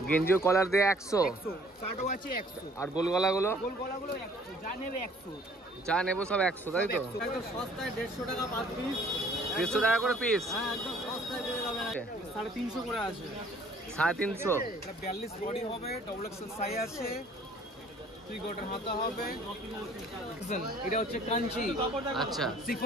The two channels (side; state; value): both; normal; correlation 0.56